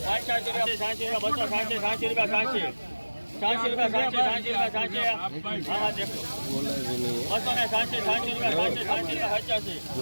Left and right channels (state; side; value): inverted; both; correlation -1.00